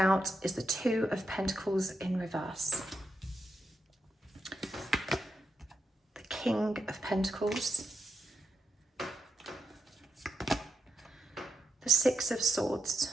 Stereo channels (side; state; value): both; normal; correlation 0.83